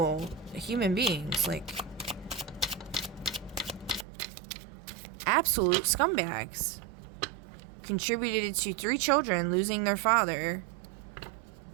human beings, like absolute scumbags. Contributed to 3 children losing their father.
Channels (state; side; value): drops out; left; at 4.0 s